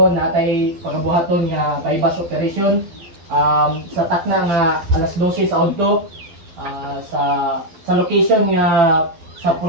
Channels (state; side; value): late; left; 12 ms